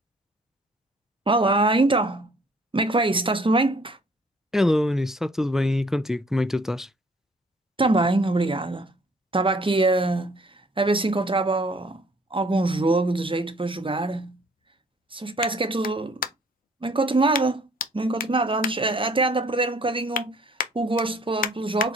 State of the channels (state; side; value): normal; both; correlation 0.59